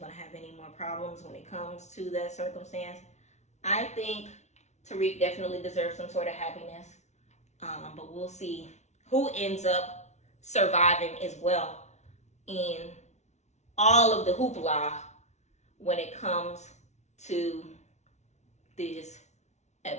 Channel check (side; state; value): right; late; 0.32 ms